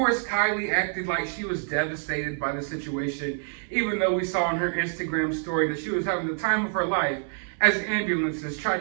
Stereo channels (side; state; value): left; silent; 60 dB below the other